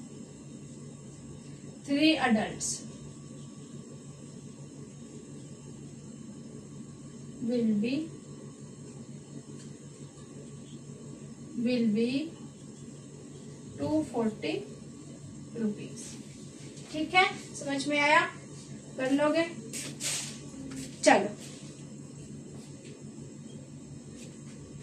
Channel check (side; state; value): both; identical; correlation 1.00